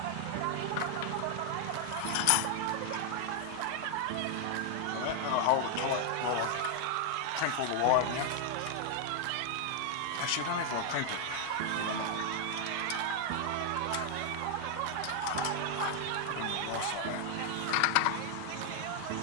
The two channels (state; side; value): different; both; correlation 0.00